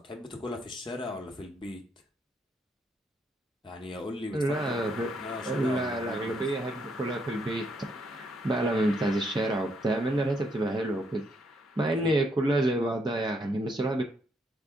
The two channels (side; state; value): both; normal; correlation 0.74